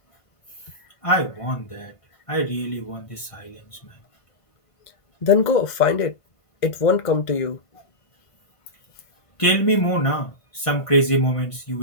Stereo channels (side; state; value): right; late; 1.5 ms